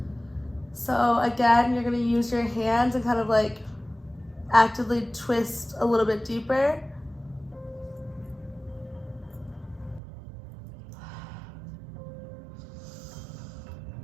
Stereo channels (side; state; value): left; drops out; at 10.0 s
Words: So again, you're gonna use your hands and kind of like actively twist a little bit deeper.